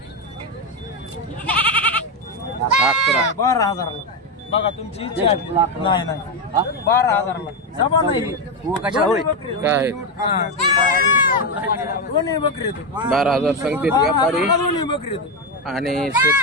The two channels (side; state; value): both; normal; correlation 0.09